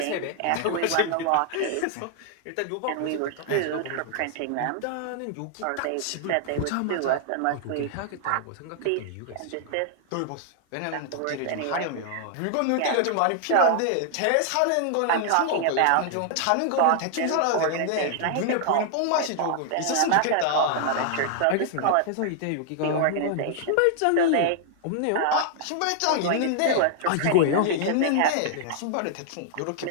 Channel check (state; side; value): different; both; correlation 0.00